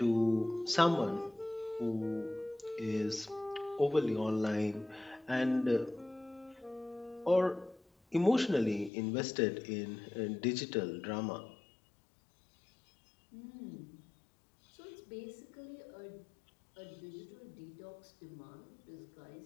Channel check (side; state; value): right; drops out; at 8.9 s